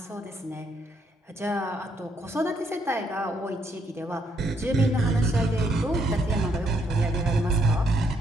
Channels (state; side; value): normal; both; correlation 0.73